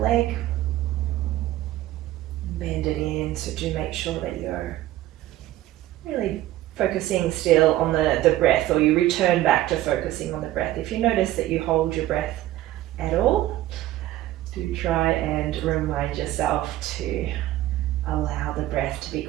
leg. Bend it in, so do make sure that you're really focusing still on the breath, or you return back to focusing on the breath. If you notice that you hold your breath at all, do try and remind yourself to allow the breath to be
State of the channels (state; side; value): quieter; left; 14.9 dB